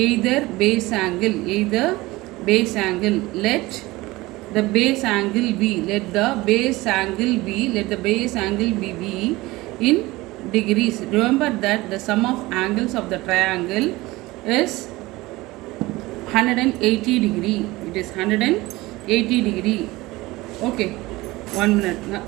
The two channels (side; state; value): left; quieter; 20.2 dB